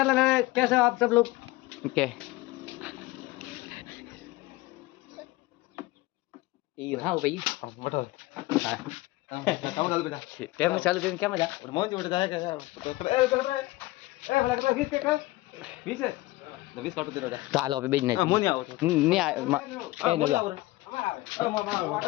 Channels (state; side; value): quieter; right; 19.4 dB